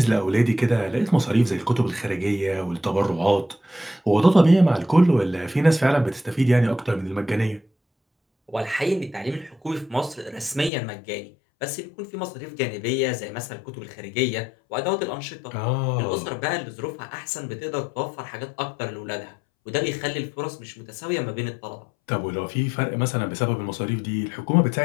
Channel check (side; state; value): right; drops out; at 10.7 s